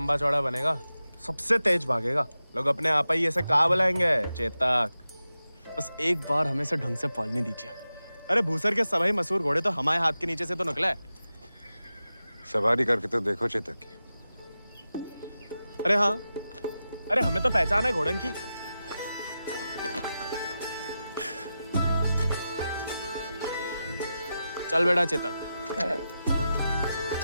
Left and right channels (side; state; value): both; inverted; correlation -0.92